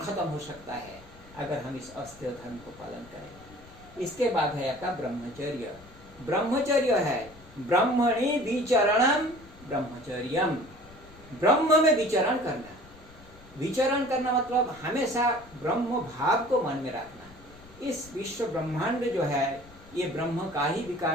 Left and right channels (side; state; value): left; noise; rumble, 23 dB below the sound